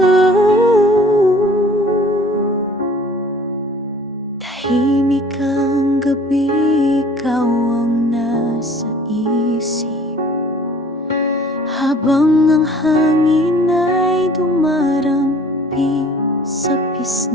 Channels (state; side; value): normal; both; correlation 0.51